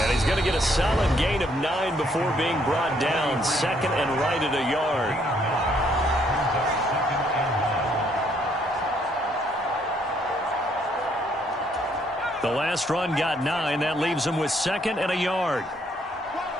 And he's going to get a solid gain of 9 before being brought down. 2nd and right at a yard. The last run got 9. That leaves him with 2nd and a yard.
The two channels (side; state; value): both; normal; correlation 0.68